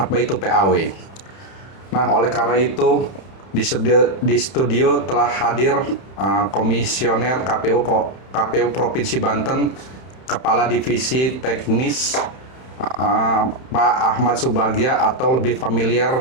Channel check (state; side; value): late; right; 31 ms